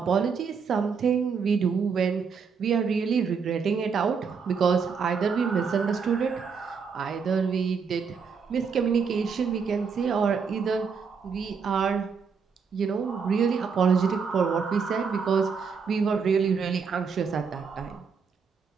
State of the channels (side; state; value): left; quieter; 5.8 dB